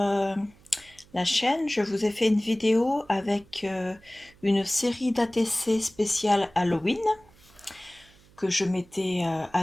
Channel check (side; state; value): right; noise; hum, 28 dB below the sound